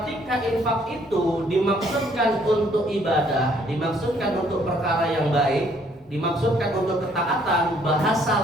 infak itu dimaksudkan untuk ibadah, dimaksudkan untuk perkara yang baik, dimaksudkan untuk ketaatan, bahasa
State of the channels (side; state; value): both; normal; correlation 0.64